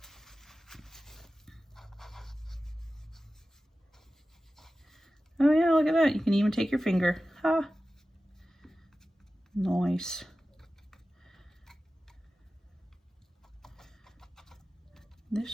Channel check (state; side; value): normal; both; correlation 0.95